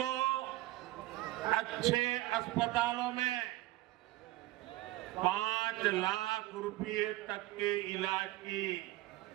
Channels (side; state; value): left; quieter; 17.6 dB